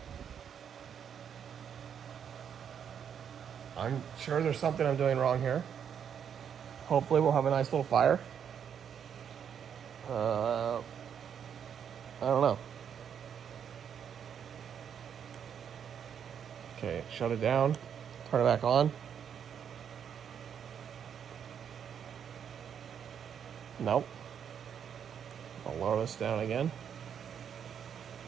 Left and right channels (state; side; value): quieter; left; 8.1 dB